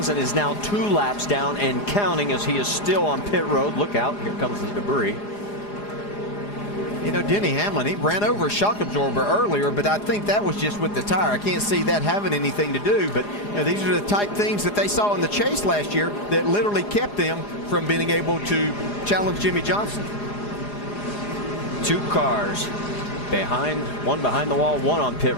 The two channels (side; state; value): right; late; 4.9 ms